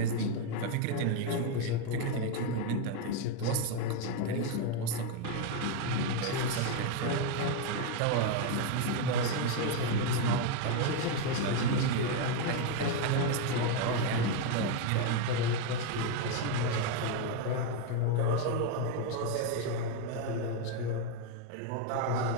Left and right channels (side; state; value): both; different; correlation 0.02